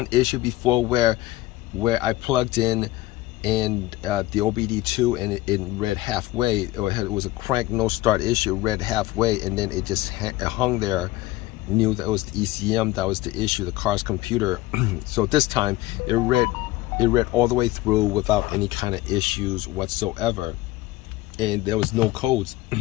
issue before where I plugged in and the OBD2 and it read halfway. It was a crank no start issue. It read halfway and then it just hung there. Knew that it was the ECM that was the issue, the car's computer. So this time it read all the way through without any kind of issues whatsoever, and there was no codes.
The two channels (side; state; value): right; quieter; 17.6 dB